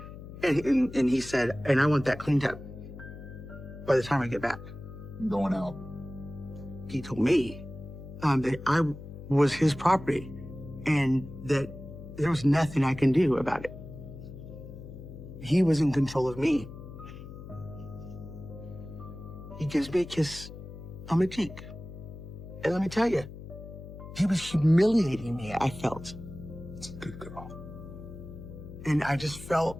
And he said, and I want that cleaned up by the time I get back. I'm going out. He told me that I was his property and that there was nothing I can do about it. He was in control of me. He gives me a kiss on my cheek. And let me tell you, he was humiliating me, I felt. It's a good girl. And I just felt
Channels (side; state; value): left; noise; hum, 13 dB below the sound